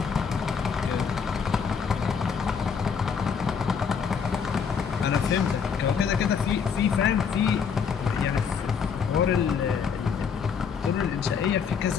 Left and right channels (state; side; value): quieter; right; 6.5 dB